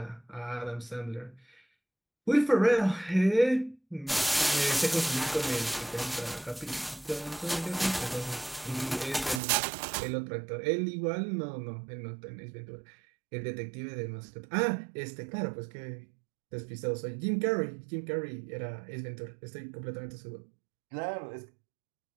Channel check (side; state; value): left; drops out; at 9.4 s